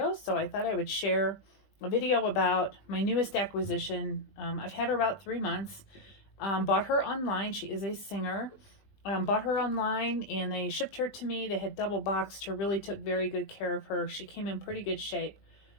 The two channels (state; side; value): late; right; 20 ms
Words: so I thought I would share a video about my newest acquisition. I've had her about 3 months. Bought her online. She is a singer. Bought her online, and they shipped her to me. They had double boxed her, really took very good care of her. She came in pretty good shape,